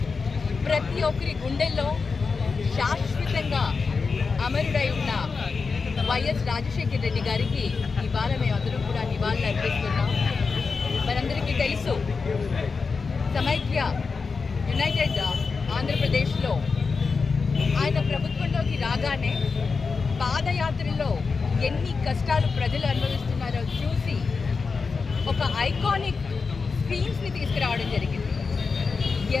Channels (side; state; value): right; quieter; 4.8 dB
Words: ప్రతి ఒక్కరి గుండెల్లో శాశ్వతంగా అమరుడై ఉన్న వైఎస్ రాజశేఖర రెడ్డి గారికి ఇవాళ మేమందరం కూడా నివాళులు అర్పిస్తున్నాం. మనందరికీ తెలుసు, సమైక్య యునైటెడ్ ఆంధ్రప్రదేశ్లో ఆయన ప్రభుత్వంలోకి రాగానే పాదయాత్రలో ఎన్ని కష్టాలు ప్రజలు అనుభవిస్తున్నారో చూసి ఒక ఐకానిక్ స్కీమ్స్ని తీసుకురావడం జరిగింది.